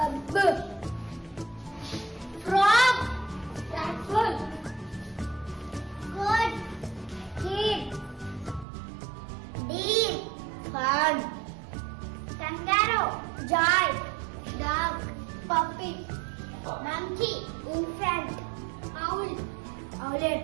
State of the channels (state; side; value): drops out; left; at 8.7 s